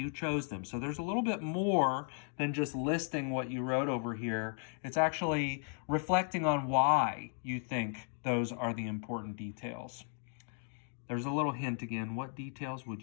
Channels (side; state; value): right; silent; 54 dB below the other